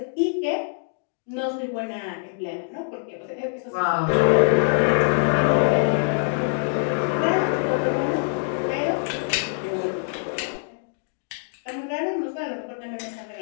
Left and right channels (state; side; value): silent; right; digital silence